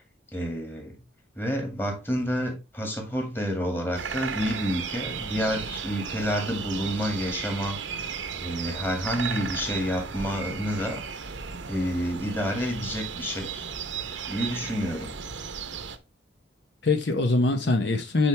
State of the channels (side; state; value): both; normal; correlation 0.61